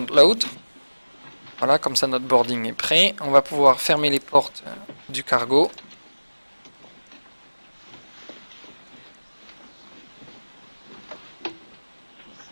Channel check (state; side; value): inverted; both; correlation -1.00